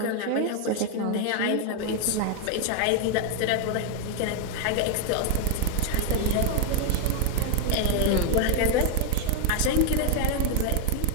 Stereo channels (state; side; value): different; both; correlation 0.00